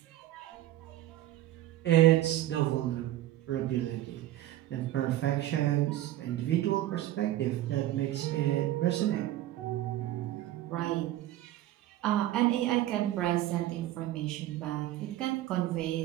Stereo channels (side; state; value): left; quieter; 14.2 dB